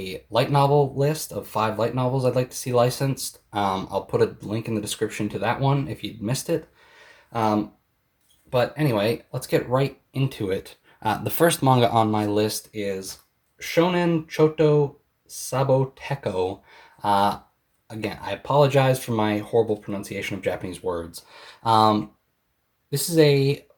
light novel list of 5 light novels I'd like to see licensed. I'll put a link in the description to that one if you'd missed it. Um, but anyway, let's get right into it. The first manga on my list is Shonen Choto Saboteko. Uh, Again, I apologize for my horrible pronunciation of Japanese words. Um, this is a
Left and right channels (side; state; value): both; identical; correlation 1.00